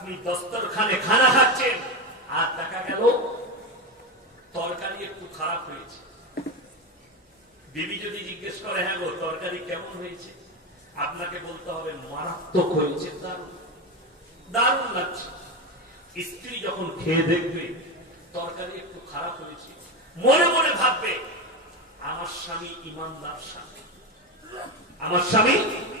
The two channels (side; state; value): both; normal; correlation 0.15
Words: দস্তরখানে খানা খাচ্ছেন আর দেখা গেল তরকারি একটু খারাপ হয়েছে। বিবি যদি জিজ্ঞেস করে হ্যাঁ গো তরকারি কেমন হয়েছে, আপনাকে বলতে হবে মারাত্মক হয়েছে, দারুণ দারুণ লাগছে। স্ত্রী যখন খেয়ে দেখবে তরকারি একটু খারাপ হয়েছে, মনে মনে ভাববে আমার স্বামী ইমানদার স্বামী, আমার স্বামী